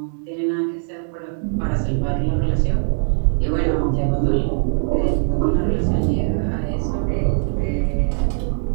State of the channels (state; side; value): silent; left; digital silence